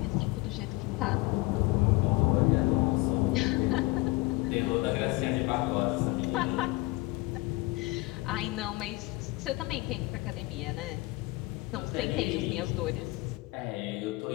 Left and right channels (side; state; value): right; quieter; 21.9 dB